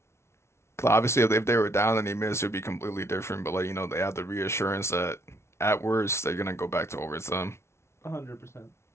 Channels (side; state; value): right; late; 0.13 ms